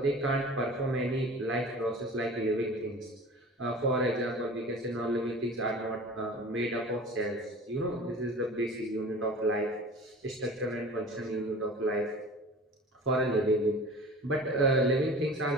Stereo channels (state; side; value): normal; both; correlation 0.40